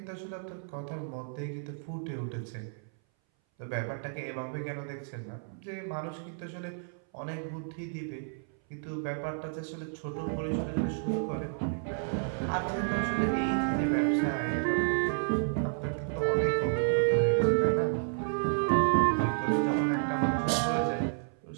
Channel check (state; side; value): silent; left; 57 dB below the other